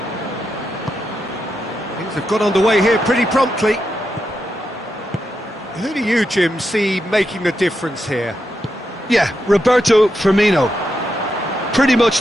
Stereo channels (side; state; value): both; normal; correlation 0.85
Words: Things have got underway here pretty promptly. Who do you, Jim, see making the difference here? Yeah, Roberto Firmino. Pretty much